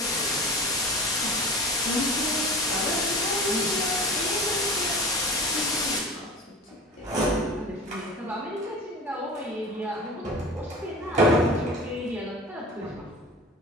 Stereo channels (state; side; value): normal; both; correlation 0.35